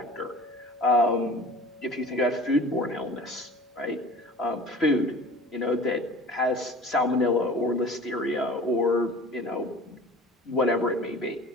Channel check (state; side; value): normal; both; correlation 0.42